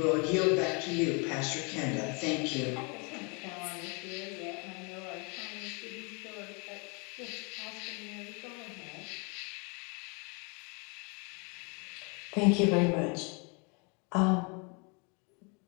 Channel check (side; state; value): right; quieter; 33.1 dB